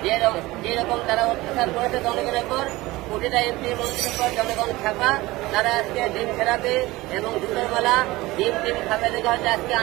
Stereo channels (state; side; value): quieter; left; 19.7 dB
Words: যেরকম তারা অত্যাচার করেছে জনগণের পর, প্রতিটা এমপি মন্ত্রীর পর জনগণ খাপা, তারা আজকে ডিম থেরাপি এবং জুতোর মালা ডিম খাপে দেখে হয়তো আজকে